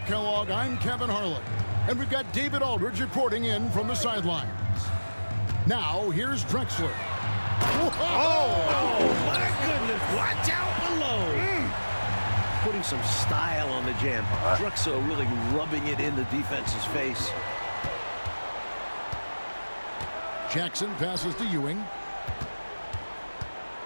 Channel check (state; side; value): inverted; both; correlation -1.00